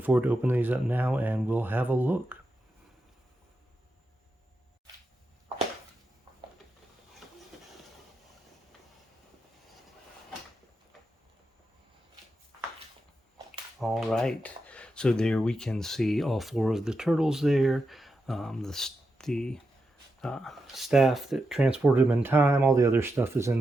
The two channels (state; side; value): normal; both; correlation 0.87